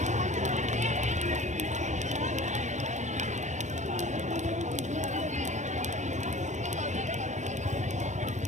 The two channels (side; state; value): left; late; 0.34 ms